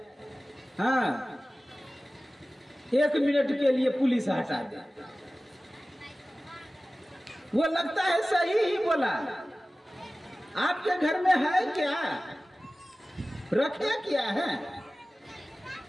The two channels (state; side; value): normal; both; correlation 0.97